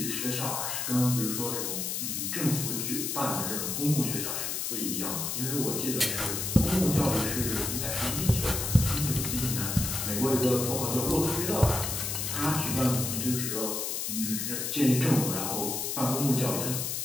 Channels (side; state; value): left; noise; hiss, 2 dB below the sound